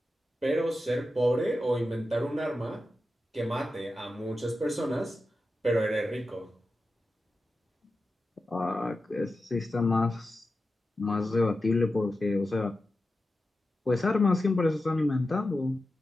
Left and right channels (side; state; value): both; normal; correlation 0.92